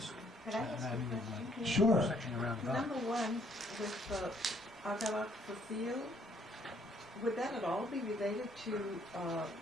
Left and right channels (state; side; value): normal; both; correlation 0.66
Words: a question? Sure. Number 1, with Agarak for field, would that at all be related to